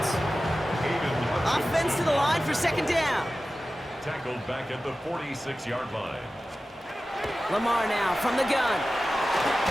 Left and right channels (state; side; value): normal; both; correlation 0.95